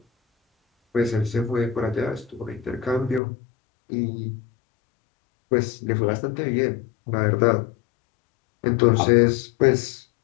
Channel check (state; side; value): drops out; right; at 3.2 s